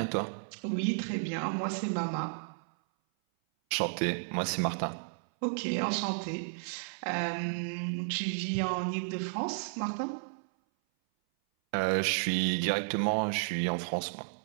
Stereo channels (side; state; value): left; silent; 56 dB below the other